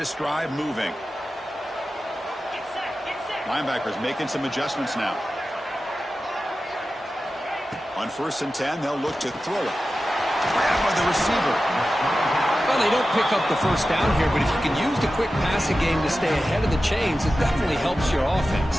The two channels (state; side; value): normal; both; correlation 0.94